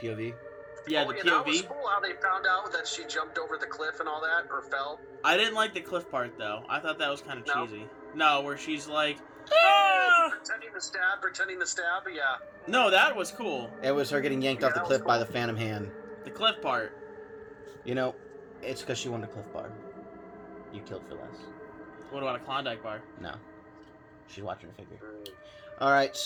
Yeah, the That POV. was cool how they found out that she jumped over the cliff and all that, or fell. I didn't like the cliff part, though. I thought that was kind of No? cheesy. No, where she's like, ah! Pretending to stab, yeah. No, that was cool. It was her getting yanked off the that was cliff by cool. the Phantom Hand. The cliff part. You know, it's because she wanted a Cliff Bar. You killed for less. What about a Klondike bar? No. She's watching her figure. Alright,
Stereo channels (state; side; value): identical; both; correlation 1.00